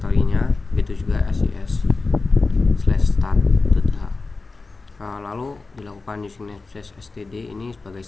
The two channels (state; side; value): quieter; right; 3.8 dB